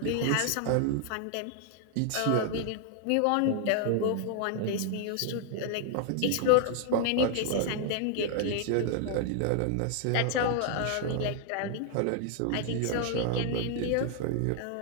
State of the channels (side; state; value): both; different; correlation 0.00